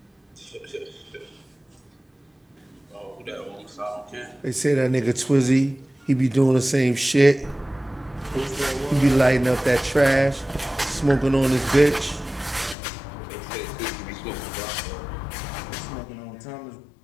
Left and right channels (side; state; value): right; drops out; at 12.8 s